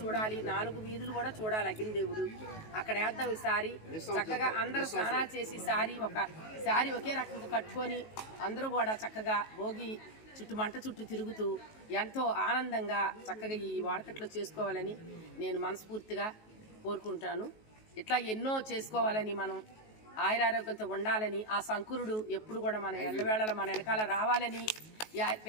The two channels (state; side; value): late; right; 19 ms